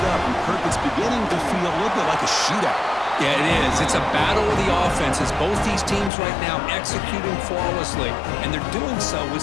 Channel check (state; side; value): drops out; right; at 6.1 s